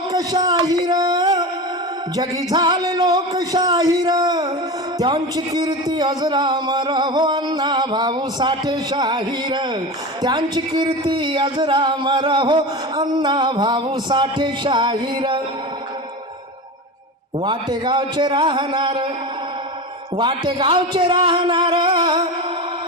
जगी झाले लोकशाहीर, त्यांची कीर्ती अजरामर हो अण्णा भाऊ साठे शाहीर, त्यांची कीर्ती अजरामर हो अण्णा भाऊ साठे शाहीर. वाटेगावचे राहणार, वाटेगावचे राहणार,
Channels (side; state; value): both; normal; correlation 0.26